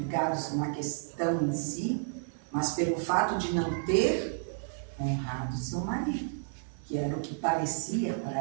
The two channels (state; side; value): silent; left; digital silence